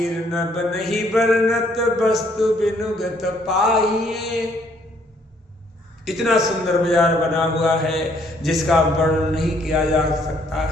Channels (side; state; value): both; normal; correlation 0.66